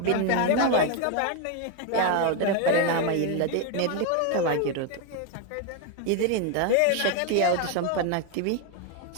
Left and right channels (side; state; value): both; different; correlation 0.01